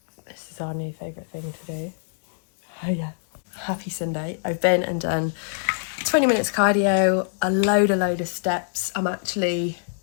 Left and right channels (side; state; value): right; silent; digital silence